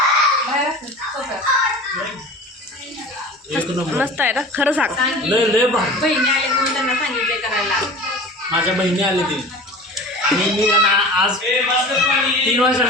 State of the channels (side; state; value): both; normal; correlation 0.37